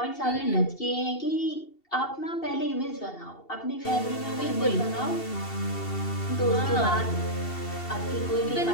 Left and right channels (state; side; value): late; right; 2.7 ms